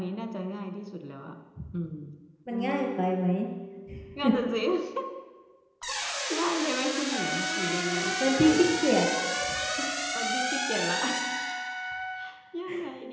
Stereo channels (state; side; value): identical; both; correlation 1.00